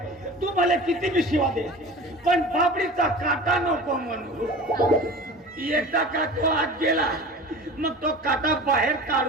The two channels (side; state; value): both; normal; correlation 0.37